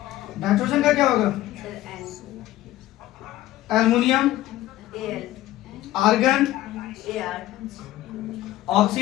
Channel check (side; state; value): right; quieter; 15.0 dB